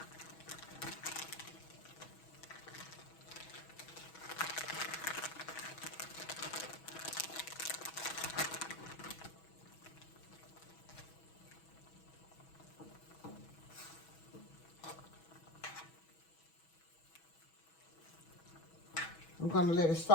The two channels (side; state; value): right; late; 6.2 ms